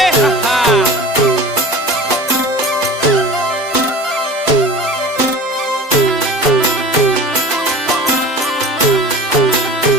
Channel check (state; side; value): normal; both; correlation 0.38